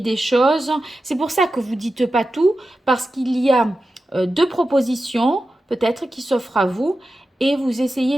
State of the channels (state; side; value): normal; both; correlation 0.92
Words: choses. C'est pour ça que vous ne dites pas tout, parce qu'il y a deux propositions, peut-être, qui s'offrent à vous. Et vous